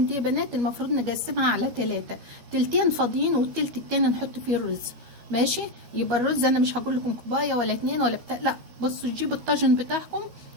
دي يا بنات؟ المفروض نقسمها على 3، تلتين فاضيين والتلت التاني نحط فيه الرز. ماشي. يبقى الرز انا مش هقول لكم كوبايه ولا 2 ولا بتاع، لا بصوا جيبوا الطاجن بتاعكم.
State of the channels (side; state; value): left; late; 12 ms